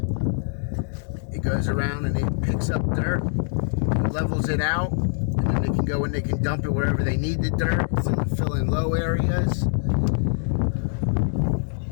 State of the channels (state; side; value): silent; right; digital silence